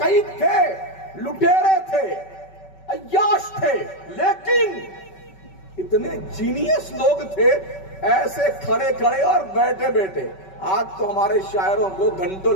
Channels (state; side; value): late; right; 5.3 ms